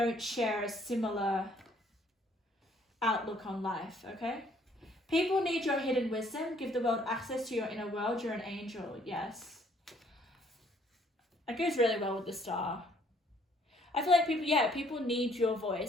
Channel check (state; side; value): normal; both; correlation 0.63